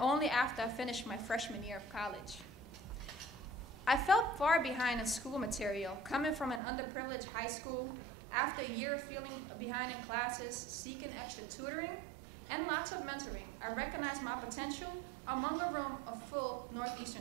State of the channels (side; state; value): left; drops out; at 6.6 s